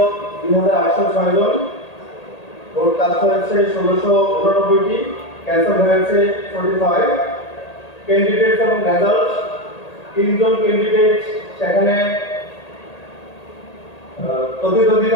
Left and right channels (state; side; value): late; right; 1.8 ms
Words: 2806 জন। ভোট কাস্ট হয়েছে 1689টি, ক্যান্সেল হয়েছে 45। ক্যান্ডিডেট এবং রেজাল্ট, 3 জন ক্যান্ডিডেট সেখানে